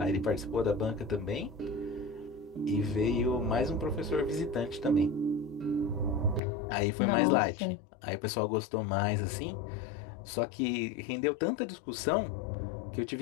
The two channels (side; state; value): right; drops out; at 6.4 s